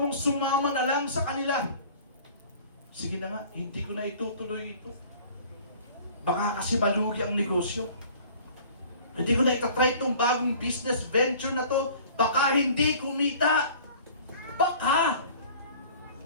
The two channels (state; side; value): inverted; both; correlation -0.48